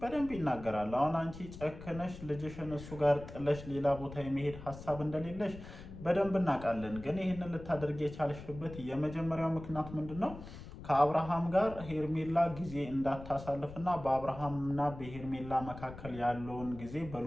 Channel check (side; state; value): left; noise; rumble, 13 dB below the sound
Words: በደንብ ይናገራል። አሁን አንቺ ጨክነሽ ልጅሽን እሱ ጋር ጥለሽ ሌላ ቦታ የመሄድ ሀሳብ እንደሌለሽ በደንብ እናውቃለን። ግን ይህንን ልታደርግ የቻልሽበት የመጀመሪያው ምክንያት ምንድን ነው? ከአብርሃም ጋር ሄርሜላ ጊዜ እንዳታሳልፍና በአብርሃምና በሄርሜላ መካከል ያለውን ጊዜ